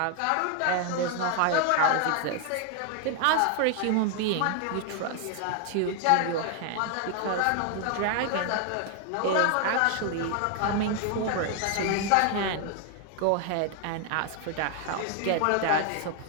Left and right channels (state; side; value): different; both; correlation 0.00